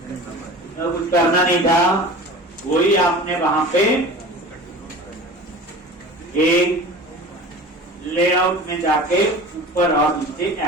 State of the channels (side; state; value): both; normal; correlation 0.38